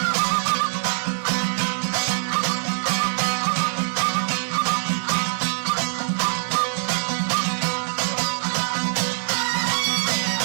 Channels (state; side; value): silent; left; 63 dB below the other